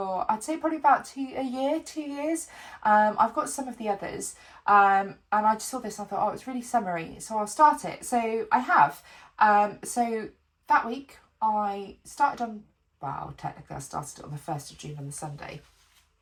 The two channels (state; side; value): identical; both; correlation 1.00